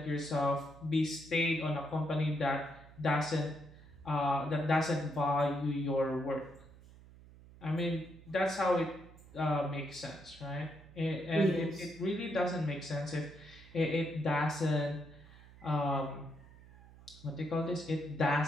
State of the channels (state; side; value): noise; right; hum, 21 dB below the sound